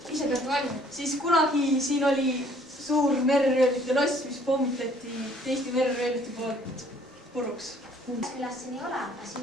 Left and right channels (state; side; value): normal; both; correlation 0.59